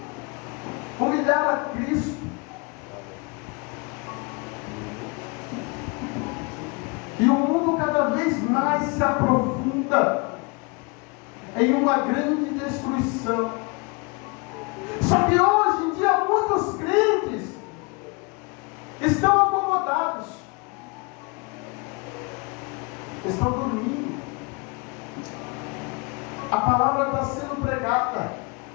humilhar a Cristo. E o mundo cada vez mais se aprofunda em uma grande destruição. Só que hoje em dia muitos crentes estão acomodados, estão dormindo. A palavra está sendo pregada,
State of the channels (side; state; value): right; quieter; 30.5 dB